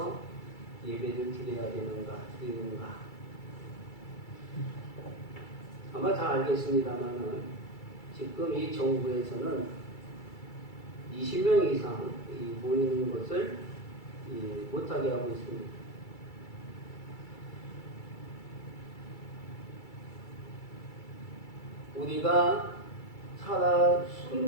예배를 드려야 드리는가? 아마 다 알겠습니다만은 지금 이 정부에서는 20명 이상 모이는 것을 못하게 하고 있습니다. 우리가 살아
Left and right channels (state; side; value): late; right; 2.3 ms